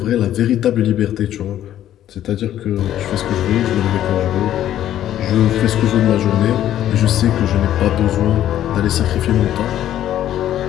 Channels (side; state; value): right; quieter; 11.8 dB